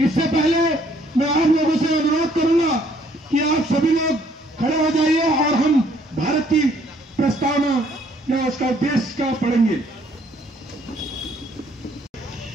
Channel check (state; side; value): normal; both; correlation 0.64